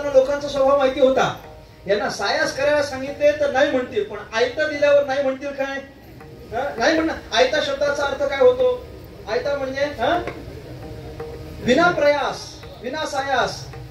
लोकांचा स्वभाव माहिती होता. यांना सायास करायला सांगितले तर नाही म्हणतील, पण आयता दिल्यावर नाही म्हणतील काय? नाही म्हणणार. आयता शब्दाचा अर्थ काय होतो? आयता म्हणजे विना प्रयास, विना सायास,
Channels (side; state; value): both; identical; correlation 1.00